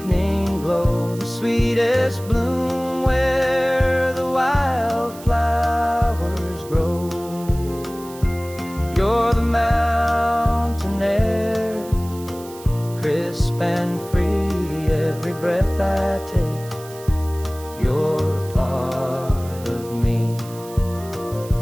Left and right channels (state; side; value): noise; right; hiss, 19 dB below the sound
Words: glow, the sweetest bloom where the wildflowers grow. You're the mountain air, crisp and free, every breath I take, you're a part of me.